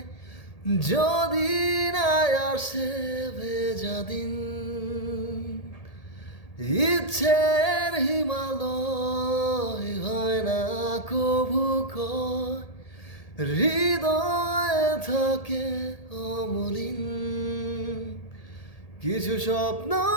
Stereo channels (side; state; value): right; late; 1.8 ms